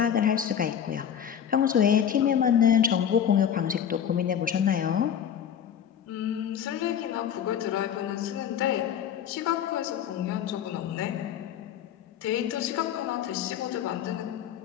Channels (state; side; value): quieter; right; 9.0 dB